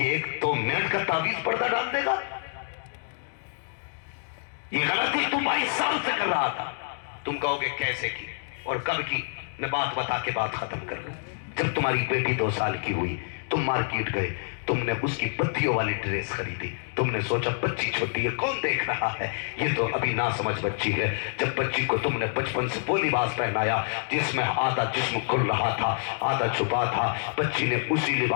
1-2 منٹ کا تعویذ پردہ ڈال دے گا؟ یہ غلطی تو 22 سال سے کر رہا تھا. تم کہو گے کیسے کی اور کب کی؟ میں بات بتا کے بات ختم کر لوں. جب تمہاری بیٹی 2 سال کی ہوئی تم مارکیٹ گئے، تم نے اس کی بتیوں والی ڈریس خریدی. تم نے سوچا بچی چھوٹی ہے کون دیکھ رہا ہے، یہ تو ابھی ناسمجھ بچی ہے. جب بچی کو تم نے بچپن سے وہ لباس پہنایا جس میں آدھا جسم کھل رہا تھا آدھا چھپا تھا، بچی نے اسی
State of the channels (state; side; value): silent; right; digital silence